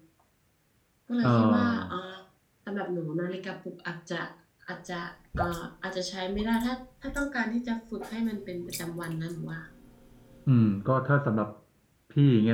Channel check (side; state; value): both; identical; correlation 1.00